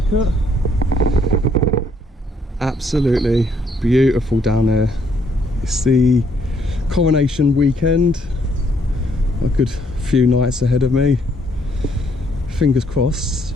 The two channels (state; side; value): normal; both; correlation 0.69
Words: Absolutely beautiful down there. It's the coronation weekend. A good few nights ahead of me. Fingers crossed